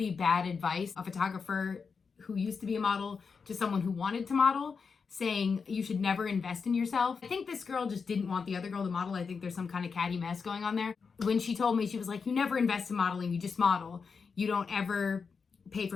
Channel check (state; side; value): quieter; right; 5.4 dB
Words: bad advice, a photographer who used to be a model to someone who wanted to model, saying you should never invest in yourself. I think this girl just didn't want the other girl to model. I think there's some kind of catty mess going on there. When she told me, she was like, you never invest in modeling, you just model. You don't ever pay